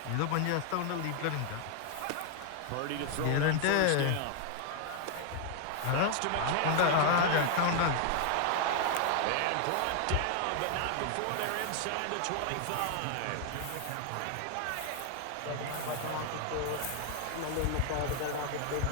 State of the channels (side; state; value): both; different; correlation 0.00